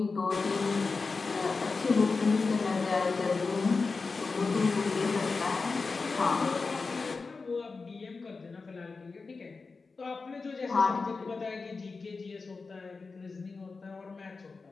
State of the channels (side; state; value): right; quieter; 4.3 dB